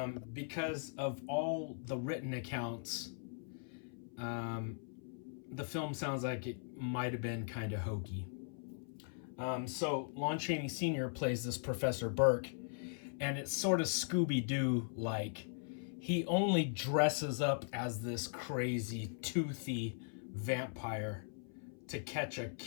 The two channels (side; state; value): right; silent; 51 dB below the other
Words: because of all the written accounts. The film sounds like it might have been kind of hokey. So Lon Chaney Sr. plays this Professor Burke, and it's sort of Scooby-Doo like. He only dresses up as this crazy, toothy vampire to catch a